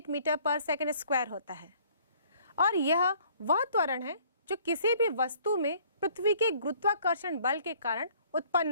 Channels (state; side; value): inverted; both; correlation -0.58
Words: मीटर पर सेकंड स्क्वायर होता है और यह वह त्वरण है जो किसी भी वस्तु में पृथ्वी के गुरुत्वाकर्षण बल के कारण